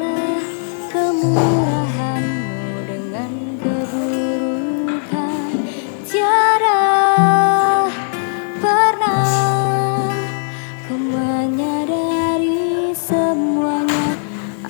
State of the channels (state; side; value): silent; right; digital silence